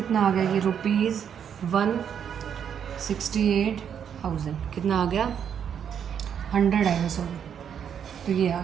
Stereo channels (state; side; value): quieter; left; 8.2 dB